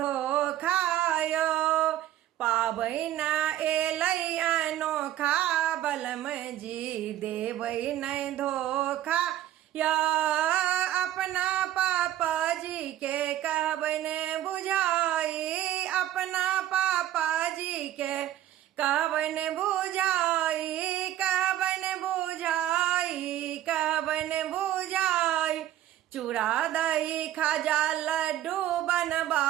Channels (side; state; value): left; quieter; 13.0 dB